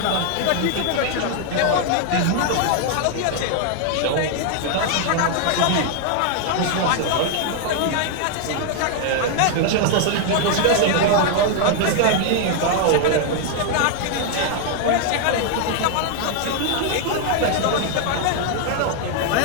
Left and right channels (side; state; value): both; different; correlation 0.00